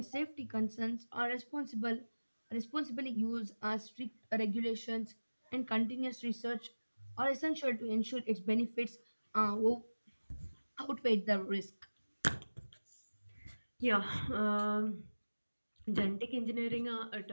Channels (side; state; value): both; inverted; correlation -1.00